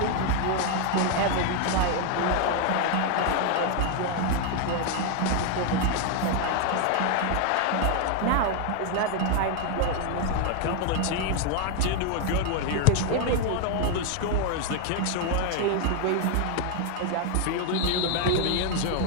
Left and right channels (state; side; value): different; both; correlation 0.00